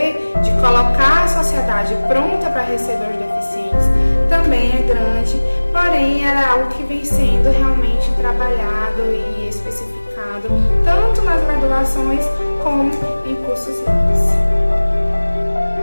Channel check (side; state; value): both; inverted; correlation -1.00